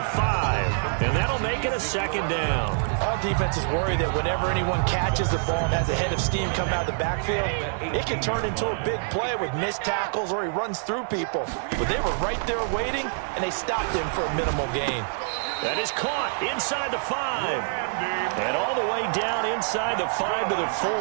5, and that'll make it a 2nd down. All defenses worry that whenever anyone catches the ball and has a head of steam come out of the backfield, it can turn into a big play with missed tackles or he runs through people. But they were right there waiting, and they stopped him for a minimal gain. That is caught inside the 5, and all the way down inside the 5 to the 4.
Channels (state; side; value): silent; left; digital silence